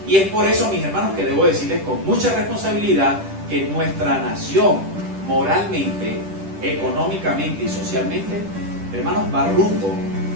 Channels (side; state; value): left; late; 10 ms